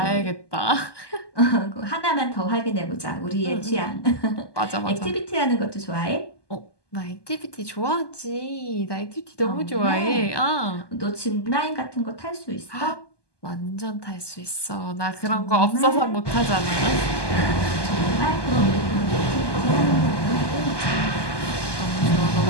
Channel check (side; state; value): right; late; 1.2 ms